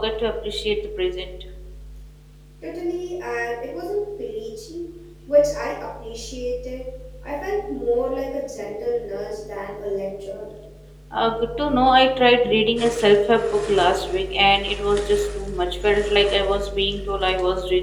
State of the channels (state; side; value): identical; both; correlation 1.00